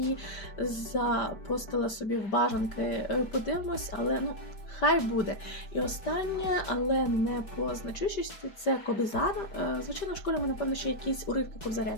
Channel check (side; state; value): right; late; 5.1 ms